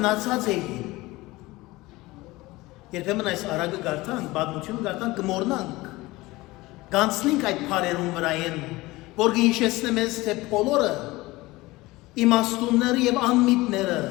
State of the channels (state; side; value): quieter; right; 20.2 dB